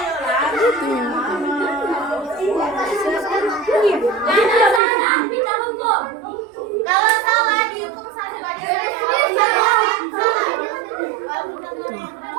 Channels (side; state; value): left; drops out; at 4.8 s